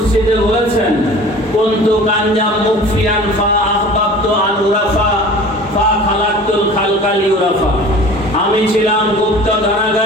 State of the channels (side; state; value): both; normal; correlation 0.43